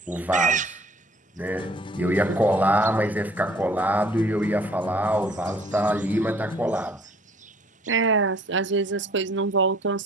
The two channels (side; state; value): both; normal; correlation 0.55